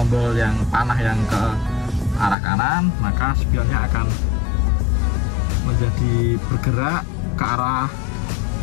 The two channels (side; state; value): right; drops out; at 2.4 s